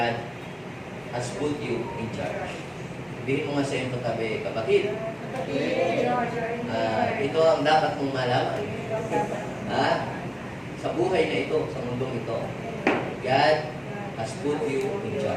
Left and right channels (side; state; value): both; identical; correlation 1.00